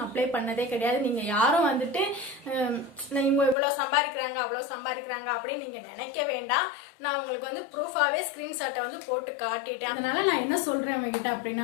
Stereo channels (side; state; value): right; drops out; at 3.6 s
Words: அப்ளை பண்ணதே கிடையாது. நீங்க யாரும் வந்துட்டு இவங்க இவ்வளவு சம்பாதிக்கிறாங்க அவ்வளவு சம்பாதிக்கிறாங்க அப்படின்னு நீங்க நினைக்க வேண்டாம். நான் உங்களுக்கு வந்து ப்ரூஃபாவே ஸ்கிரீன்ஷாட்டை வந்து போட்டு காட்டிட்டேன். அதனால நான் என்ன சொல்றேன் உங்ககிட்ட